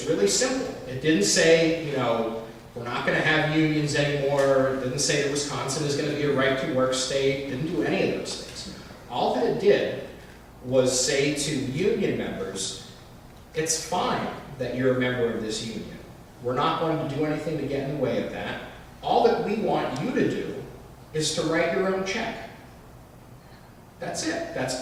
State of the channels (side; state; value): both; identical; correlation 1.00